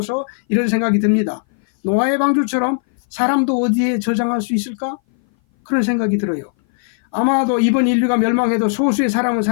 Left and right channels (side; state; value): right; silent; 59 dB below the other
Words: 이런 생각이 듭니다. 노아의 방주처럼 사람도 어디에 저장할 수 있을까? 그런 생각이 들어요. 아마도 이번 인류가 멸망해도 소수의 사람은